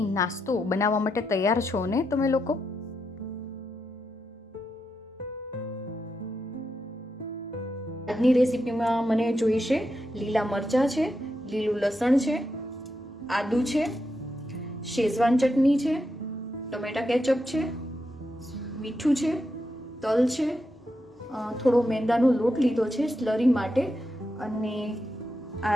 નાસ્તો બનાવવા માટે તૈયાર છો ને તમે લોકો? આજની રેસીપીમાં મને જોઈશે લીલા મરચાં છે, લીલું લસણ છે, આદુ છે, શેઝવાન ચટણી છે, ટમેટા કેચઅપ છે, મીઠું છે, તલ છે, થોડો મેંદાનો લોટ લીધો છે સ્લરી માટે, અને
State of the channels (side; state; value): both; normal; correlation 0.85